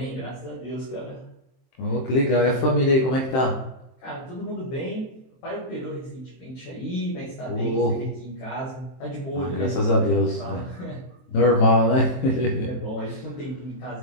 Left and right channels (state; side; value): late; right; 23 ms